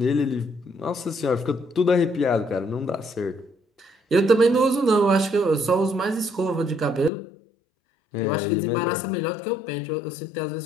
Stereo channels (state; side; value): drops out; right; at 7.1 s